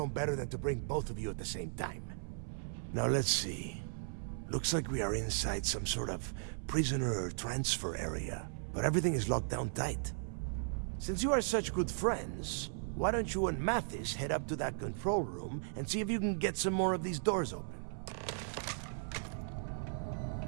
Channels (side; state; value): left; silent; 53 dB below the other